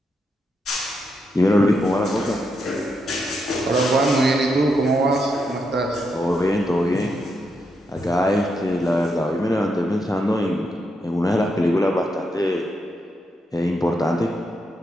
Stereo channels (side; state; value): both; normal; correlation 0.82